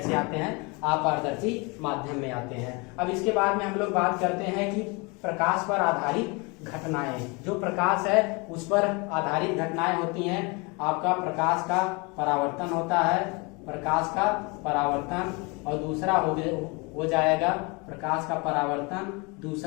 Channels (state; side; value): quieter; right; 28.9 dB